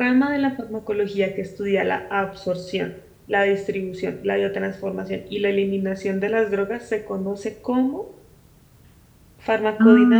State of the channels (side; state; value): both; identical; correlation 1.00